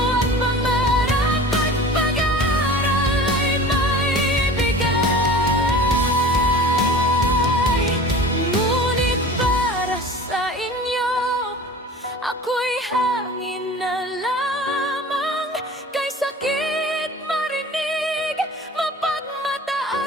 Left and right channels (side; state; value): both; normal; correlation 0.39